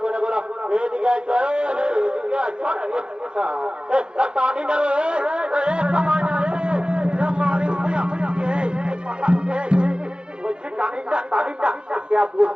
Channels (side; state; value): left; late; 0.050 ms